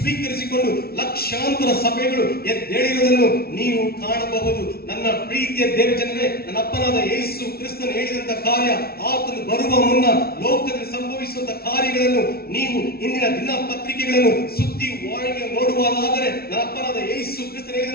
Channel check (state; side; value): late; right; 0.44 ms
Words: ಲಕ್ಷಾಂತರ ಸಭೆಗಳು ಎದ್ದೇಳಿರುವುದನ್ನು ನೀವು ಕಾಣಬಹುದು. ನನ್ನ ಪ್ರೀತಿಯ ದೇವಜನರೇ, ನನ್ನ ಅಪ್ಪನಾದ ಯೇಸು ಕ್ರಿಸ್ತನು ಹೇಳಿದಂತ ಕಾರ್ಯ, ಆತನು ಬರುವ ಮುನ್ನ ಲೋಕದಲ್ಲಿ ಸಂಭವಿಸುವಂತ ಕಾರ್ಯಗಳನ್ನು ನೀವು ಇಂದಿನ ದಿನಪತ್ರಿಕೆಗಳನ್ನು ಸುದ್ದಿವಾಹಿನಿಗಳನ್ನು ನೋಡುವುದಾದರೆ, ನನ್ನ ಅಪ್ಪನಾದ ಯೇಸು ಕ್ರಿಸ್ತನು